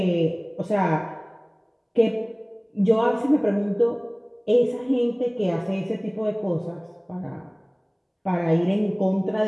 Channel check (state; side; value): identical; both; correlation 1.00